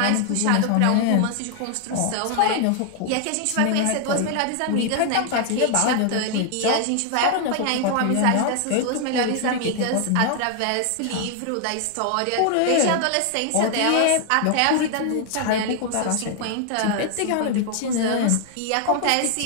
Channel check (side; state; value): both; different; correlation 0.00